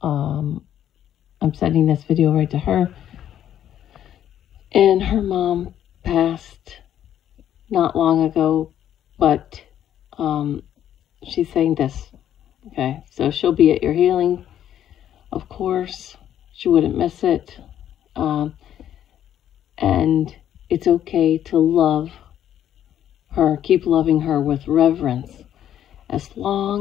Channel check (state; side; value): quieter; right; 10.7 dB